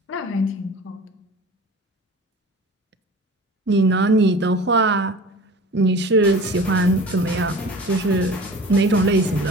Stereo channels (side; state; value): both; normal; correlation 0.40